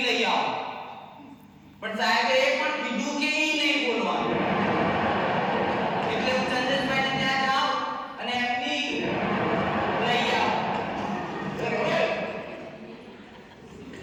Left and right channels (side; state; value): both; identical; correlation 1.00